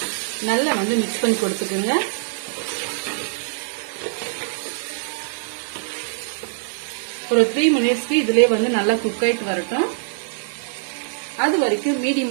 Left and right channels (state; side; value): silent; left; 64 dB below the other